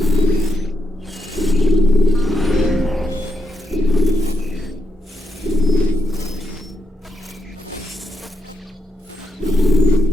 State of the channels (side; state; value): both; normal; correlation 0.82